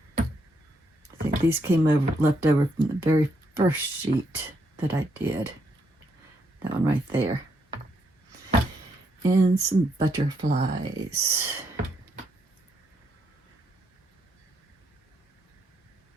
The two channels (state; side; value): normal; both; correlation 0.76